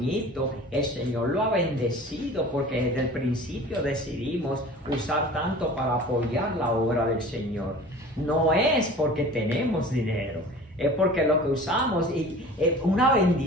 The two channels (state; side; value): normal; both; correlation 0.42